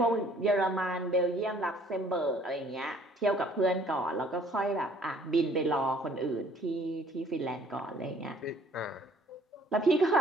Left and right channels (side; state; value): both; normal; correlation 0.58